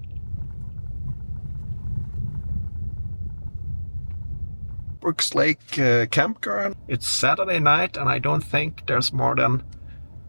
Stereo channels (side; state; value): both; inverted; correlation -1.00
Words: Brooks Lake Campground. It's Saturday night and I don't think there's more than